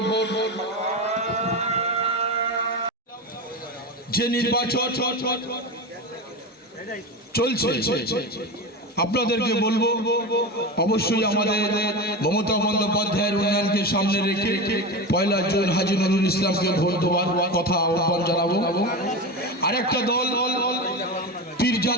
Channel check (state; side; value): normal; both; correlation 0.22